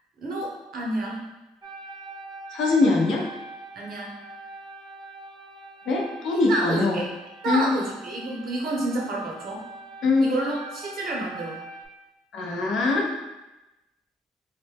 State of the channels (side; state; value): both; normal; correlation 0.69